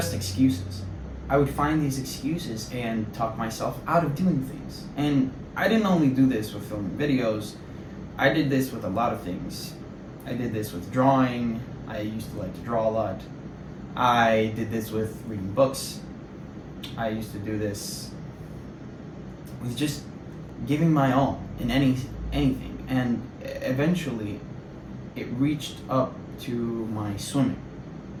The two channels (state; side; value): identical; both; correlation 1.00